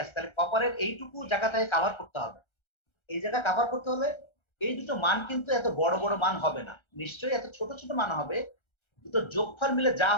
আছে। তাহলে কপারের এইটুকু জায়গাটাকে কাভার করতে হবে। এই জায়গা কাভার করতে হলে এই দুটো মান কিন্তু এত বড় বড় মান হবে না, নিশ্চয়ই এত ছোট ছোট মান হবে। দুটো যোগফল মিলে যা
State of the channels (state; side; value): late; right; 1.3 ms